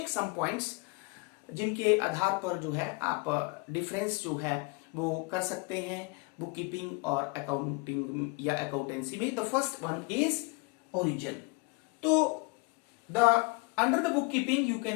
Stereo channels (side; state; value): right; quieter; 28.1 dB